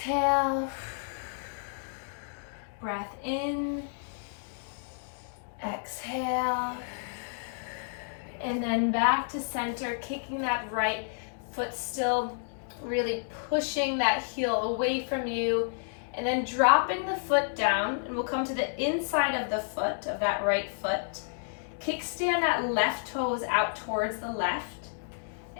Breath in. Exhale. And then back to center, kicking that right foot still, really pushing that heel away from you. And then dropping the foot down, and we'll come to the inside of the foot, of that right foot. Kickstand that left toes out towards the left.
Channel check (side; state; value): right; silent; digital silence